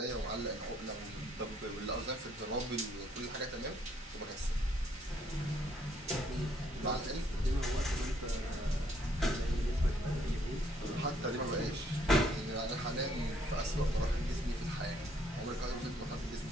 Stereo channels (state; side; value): normal; both; correlation 0.68